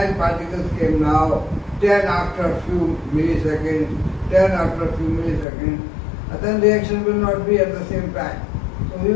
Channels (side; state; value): right; drops out; at 5.5 s